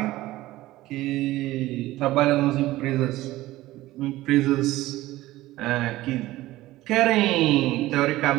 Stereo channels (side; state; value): left; quieter; 16.8 dB